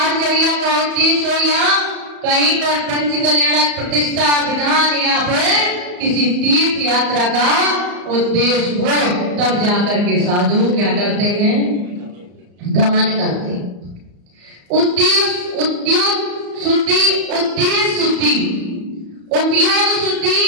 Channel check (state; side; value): late; left; 34 ms